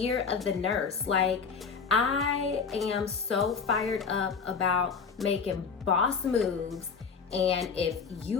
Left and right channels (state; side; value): quieter; right; 5.6 dB